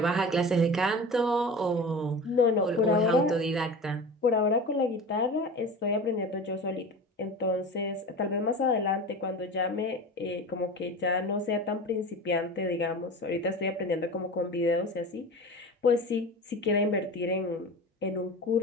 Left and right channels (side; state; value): both; normal; correlation 0.33